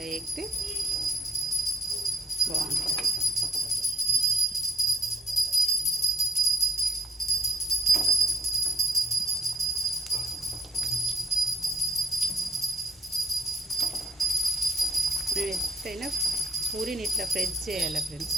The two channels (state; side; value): normal; both; correlation 0.57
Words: వేగితే బాగుంటుంది. ఎప్పుడైనా పూరిని ఇట్లా ప్రెస్ చేయాలి ఫ్రెండ్స్,